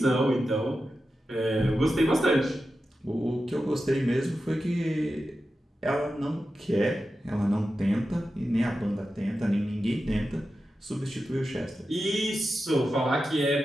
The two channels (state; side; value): normal; both; correlation 0.91